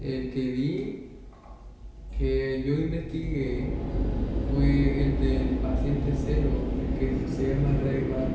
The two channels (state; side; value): identical; both; correlation 1.00